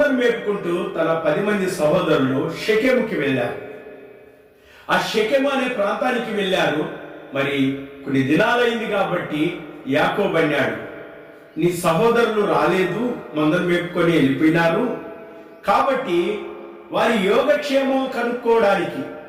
మేపుకుంటూ తన 10 మంది సహోదరులు షెకెముకి వెళ్ళారు. ఆ షెకెము అనే ప్రాంతానికి వెళ్ళారు. మరి కొన్ని దినాలైంది కాబట్టి యాకోబు అన్నాడు, నీ సహోదరులు రాలేదు, మందను మేపుకొని వెళ్ళిపోయినారు, కాబట్టి వారి యోగక్షేమం కనుక్కోవడానికి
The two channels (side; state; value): both; identical; correlation 1.00